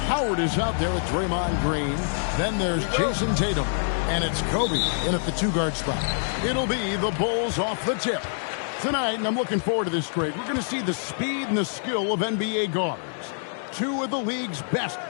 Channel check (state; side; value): silent; right; 61 dB below the other